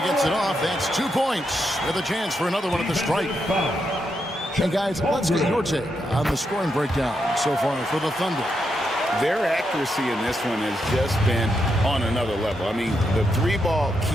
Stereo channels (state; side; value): normal; both; correlation 0.82